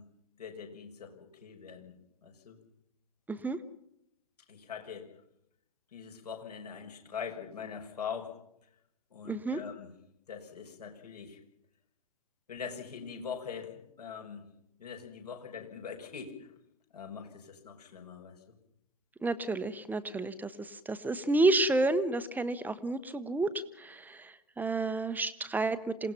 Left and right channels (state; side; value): normal; both; correlation 0.59